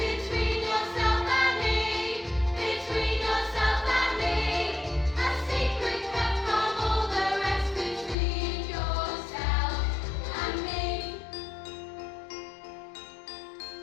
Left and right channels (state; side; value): drops out; right; at 8.2 s